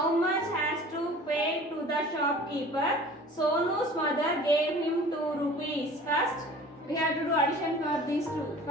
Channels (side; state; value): both; normal; correlation 0.44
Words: much has to pay to the shopkeeper? Sonu's mother gave him 2 rupees. First we have to do addition for these two.